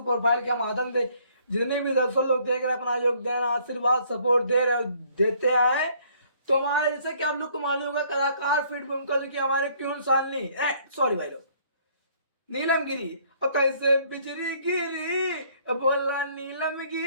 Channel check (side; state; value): both; inverted; correlation -0.62